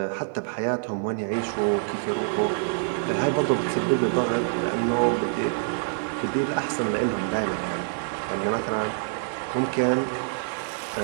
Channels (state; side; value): silent; left; digital silence